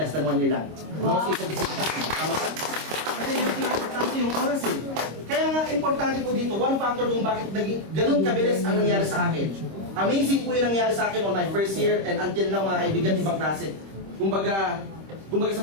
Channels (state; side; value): late; left; 26 ms